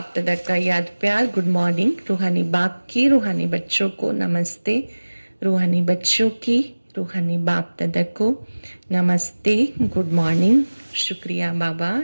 दादा का याद प्यार। Good morning. रूहानी बाप की रूहानी बच्चों को नमस्ते। रूहानी बच्चों की रूहानी बाप दादा को नमस्ते, गुड मॉर्निंग। शुक्रिया बाबा,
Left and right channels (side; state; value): both; inverted; correlation -1.00